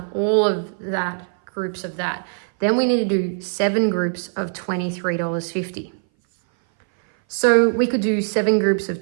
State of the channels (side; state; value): left; silent; 60 dB below the other